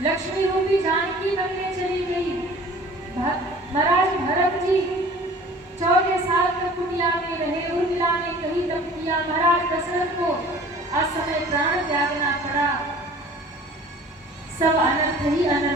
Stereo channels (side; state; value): both; normal; correlation 0.47